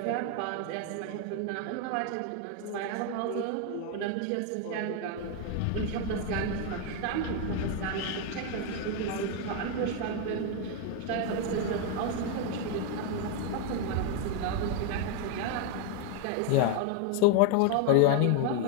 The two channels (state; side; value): different; both; correlation 0.01